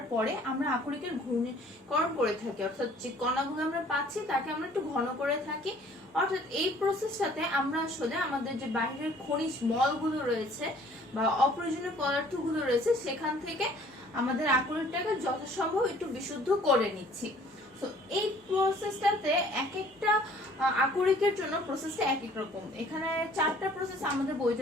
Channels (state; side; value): normal; both; correlation 0.55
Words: পরে আমরা আকরিকের ঘনীকরণ করে থাকি, অর্থাৎ যে কণাগুলো আমরা পাচ্ছি তাকে আমরা একটু ঘন করে থাকি। অর্থাৎ এই প্রসেসটাতে আমরা আসলে আমাদের যে বাইরের খনিজ মলগুলো রয়েছে বা অপ্রয়োজনীয় পদার্থগুলো রয়েছে সেখান থেকে আমাদের আকরিকটাকে যথাসম্ভব একটু বিশুদ্ধ করে নিচ্ছি। তো এই প্রসেসটাতে এক একটা আকরিকের জন্য প্রসেসটা এক এক রকম। এখানে 4টা প্রসেস আমাদের